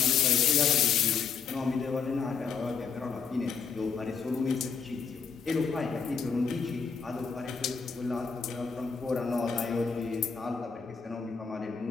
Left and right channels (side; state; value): right; quieter; 6.0 dB